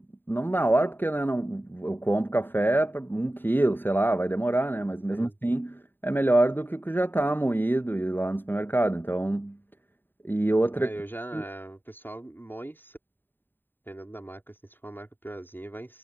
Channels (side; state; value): right; late; 0.094 ms